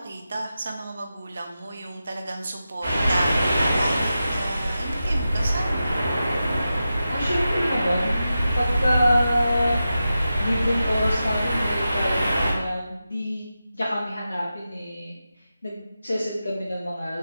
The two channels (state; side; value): inverted; both; correlation -0.91